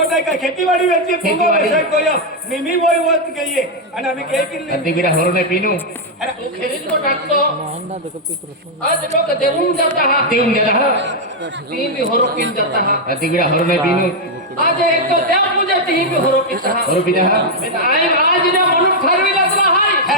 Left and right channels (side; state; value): both; normal; correlation -0.01